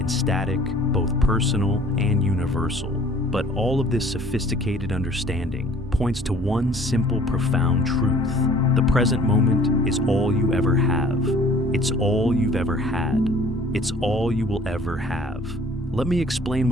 and static, both personal and universal. But all of this sophisticated understanding points to one simple, profound truth. The present moment is all you ever have. It's all you've ever had. It's all you will ever have. Let me explain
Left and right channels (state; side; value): normal; both; correlation 0.53